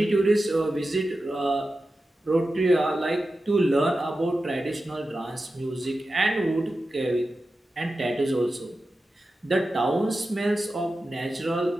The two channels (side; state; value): both; normal; correlation 0.92